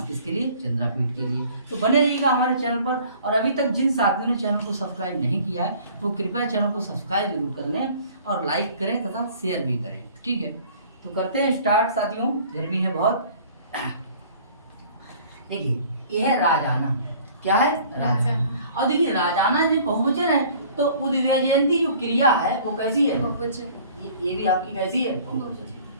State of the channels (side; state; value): both; inverted; correlation -0.51